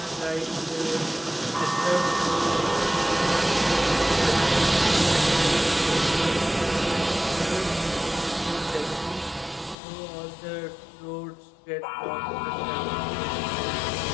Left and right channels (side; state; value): right; drops out; at 9.8 s